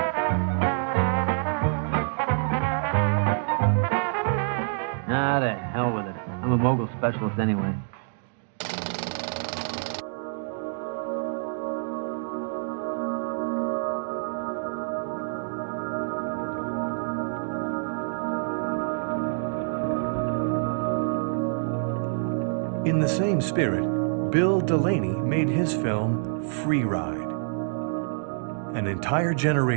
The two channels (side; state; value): left; silent; digital silence